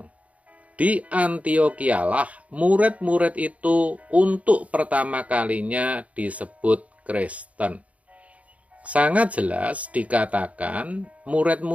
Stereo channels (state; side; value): late; left; 0.068 ms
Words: Di Antiokhia-lah murid-murid itu untuk pertama kalinya disebut Kristen. Sangat jelas dikatakan